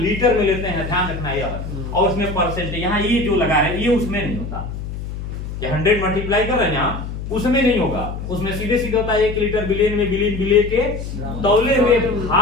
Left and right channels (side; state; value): left; noise; hum, 7 dB below the sound